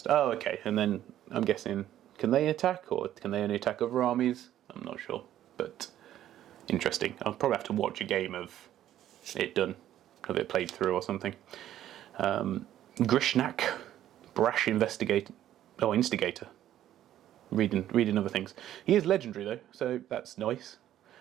Oh, okay. And then I'm guessing, can they attack, or can they only attack other armies? I'm not sure, but interesting. I'll probably have to watch a game of it done, of it played through or something. Grishnak. Brash Instigator. Reading other things. He is legendary though, so that's nice.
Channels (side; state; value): left; quieter; 12.1 dB